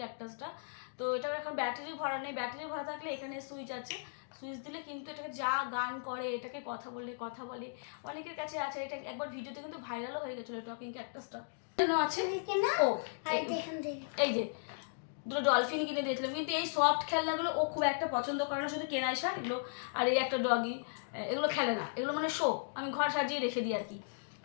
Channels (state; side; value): silent; right; digital silence